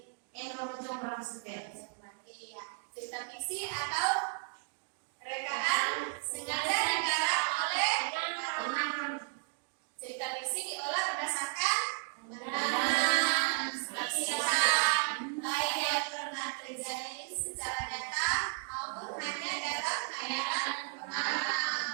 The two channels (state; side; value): silent; left; 55 dB below the other